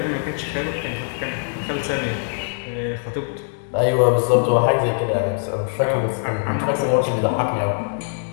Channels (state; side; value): silent; right; digital silence